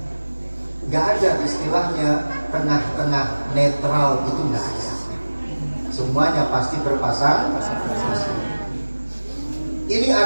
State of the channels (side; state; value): both; inverted; correlation -1.00